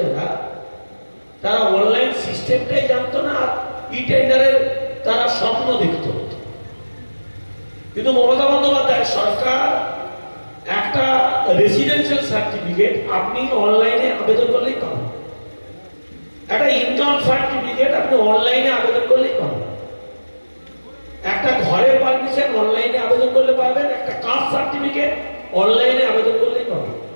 যারা, তারা অনলাইন সিস্টেমটাই জানতো না, আর ইটেন্ডারের তারা স্বপ্ন দেখত। কিন্তু মমতা বন্দ্যোপাধ্যায় সরকার একটা রেসিডেন্সিয়াল সার্টিফিকেট আপনি অনলাইনে আবেদন করলেই পাবেন, একটা ইনকাম সার্টিফিকেট আপনি অনলাইনে আবেদন করলেই পাবেন, একটা ঘরের পারমিশন অনলাইনে আবেদন করলে পাবেন, একটা কাস্ট সার্টিফিকেট অনলাইনে আবেদন করলেই পাবেন।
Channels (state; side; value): inverted; both; correlation -1.00